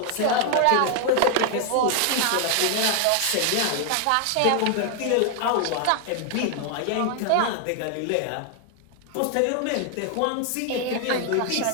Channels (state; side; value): different; both; correlation 0.00